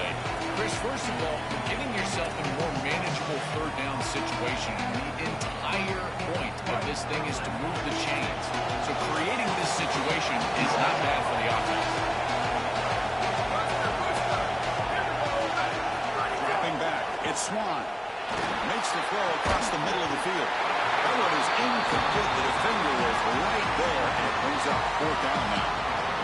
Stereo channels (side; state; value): both; identical; correlation 1.00